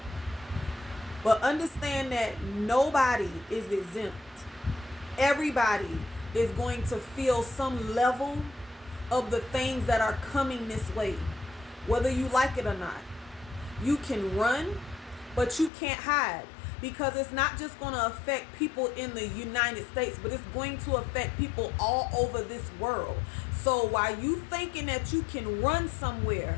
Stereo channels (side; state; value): right; drops out; at 15.7 s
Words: But understand that nobody is exempt. Everybody is going to feel some level of the things that are coming this way, whether you like it or not. You can run, but you can't hide, because it's not just going to affect people in the United States, but it's going to affect people all over this world. So while you thinking that you can run